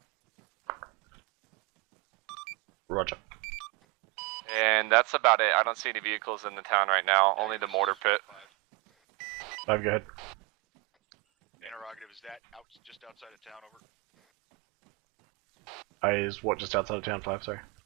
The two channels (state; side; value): quieter; left; 25.9 dB